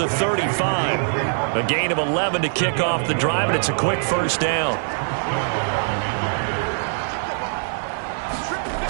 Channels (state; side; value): silent; left; 63 dB below the other